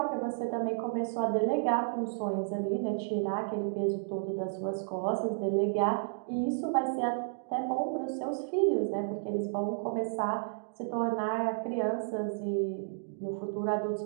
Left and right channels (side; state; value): left; silent; digital silence